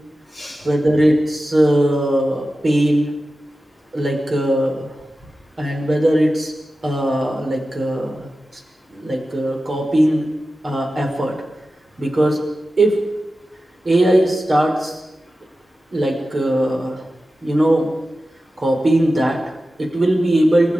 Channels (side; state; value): both; normal; correlation 0.94